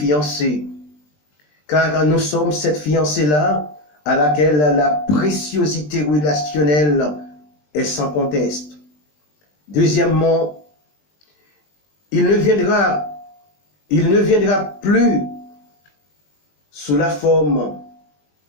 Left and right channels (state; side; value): late; right; 20 ms